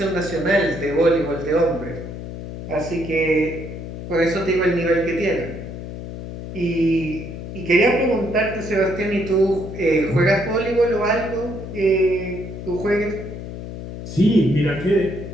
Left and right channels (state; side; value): noise; left; hum, 9 dB below the sound